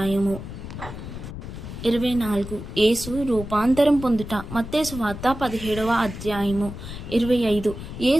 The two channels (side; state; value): left; noise; rumble, 10 dB below the sound